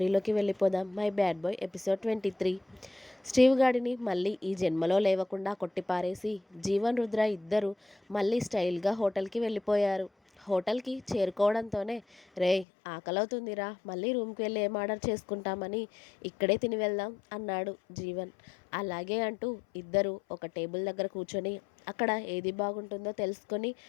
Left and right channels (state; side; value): drops out; right; at 12.7 s